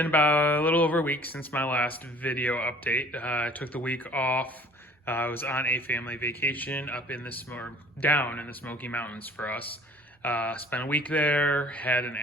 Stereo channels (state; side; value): normal; both; correlation 0.50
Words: about a little over a week since my last video update. I took the week off. I was on a family vacation up in down in the Smoky Mountains for us. Spent a week there, had an